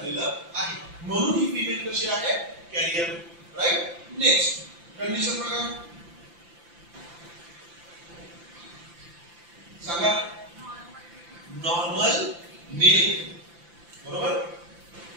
आहे, म्हणून ही फिमेल कशी आहे, कॅरियर, राईट. नेक्स्ट कंडिशन बघा, सांगा. नॉर्मल मेल, बरोबर.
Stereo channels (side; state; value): left; late; 5.9 ms